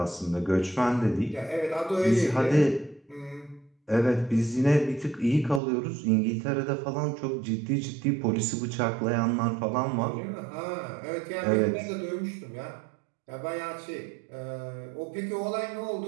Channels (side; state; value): left; drops out; at 5.6 s